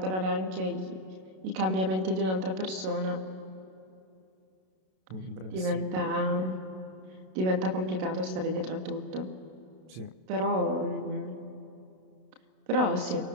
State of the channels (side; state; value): left; late; 32 ms